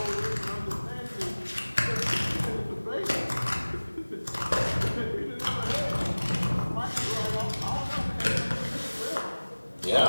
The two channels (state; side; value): inverted; both; correlation -1.00